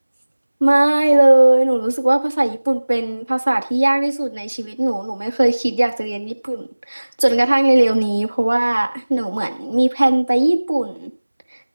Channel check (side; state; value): both; inverted; correlation -1.00